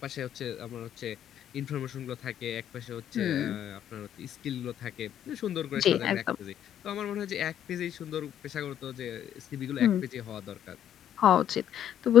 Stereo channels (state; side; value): quieter; right; 10.3 dB